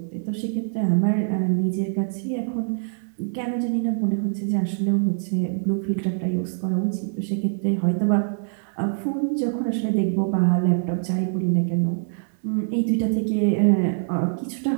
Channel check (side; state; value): left; silent; digital silence